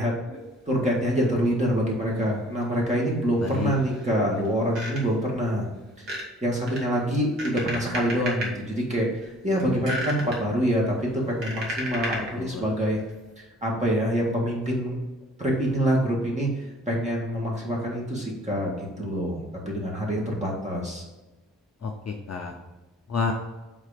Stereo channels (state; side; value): normal; both; correlation 0.55